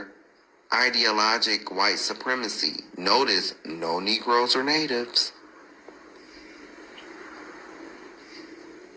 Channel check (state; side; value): identical; both; correlation 1.00